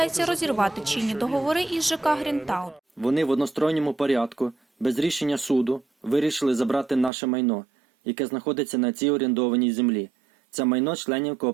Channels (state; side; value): drops out; left; at 7.1 s